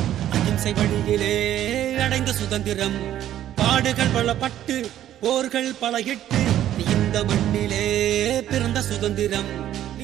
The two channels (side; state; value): left; quieter; 11.9 dB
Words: அகிம்சை வழியிலே அடைந்த சுதந்திரம், பாடுகள் பல பட்டு போர்கள் பல இட்டு இந்த மண்ணிலே பிறந்த சுதந்திரம்.